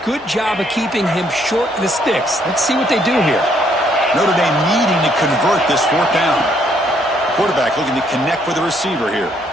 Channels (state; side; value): normal; both; correlation 0.69